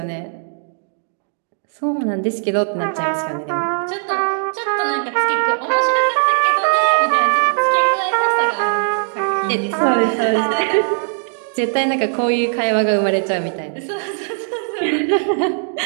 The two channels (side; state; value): left; silent; digital silence